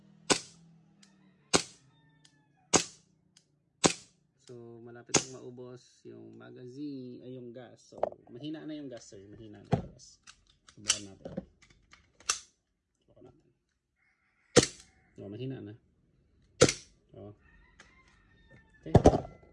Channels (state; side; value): identical; both; correlation 1.00